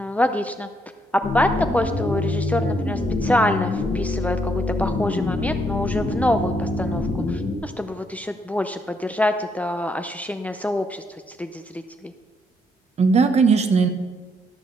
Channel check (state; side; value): normal; both; correlation 0.74